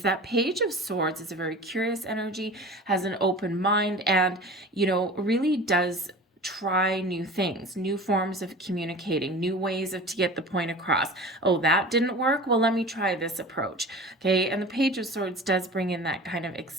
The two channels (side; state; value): both; normal; correlation 0.37